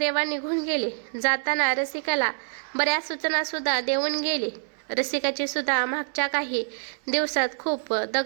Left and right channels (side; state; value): left; silent; 61 dB below the other